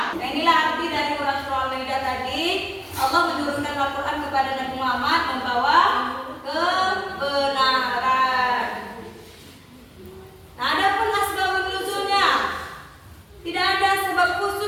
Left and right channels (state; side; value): identical; both; correlation 1.00